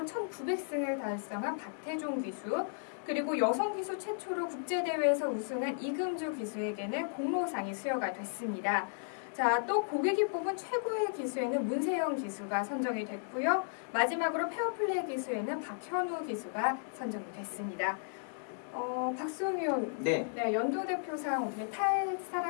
1900승을 달성한 박태종 기수, 그리고 여성 기수 최초로 국제대회에서 우승한 이금주 기수에게는 공로상이 수여가 됐습니다. 자, 또 고객이 뽑은 최고의 기수에는 문세영 기수가 선정이 됐고요. 마지막으로 페어플레이 기수에는 박현우 기수가 선정이 됐습니다. 박수홍 의원, 네. 연도 대표상 어떻게 탈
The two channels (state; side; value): silent; right; digital silence